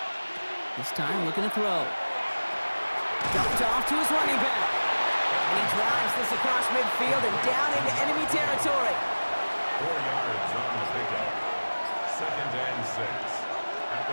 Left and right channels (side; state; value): both; inverted; correlation -1.00